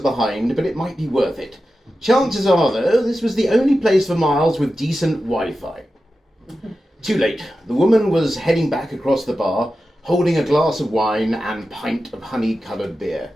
behind, but it might be worth it. Chances are, though, this was the only place for miles with decent Wi-Fi. Too late. The woman was heading back across the bar, holding a glass of wine and pint of honey-coloured beer.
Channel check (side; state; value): both; normal; correlation 0.92